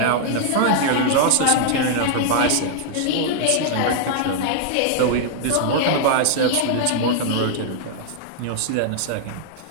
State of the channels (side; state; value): both; different; correlation -0.01